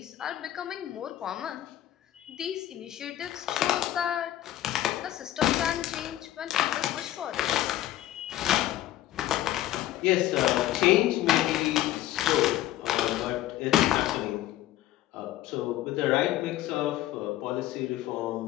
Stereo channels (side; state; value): right; quieter; 14.0 dB